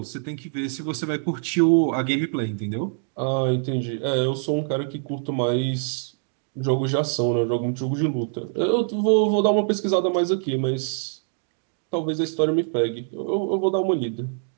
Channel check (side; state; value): left; silent; 62 dB below the other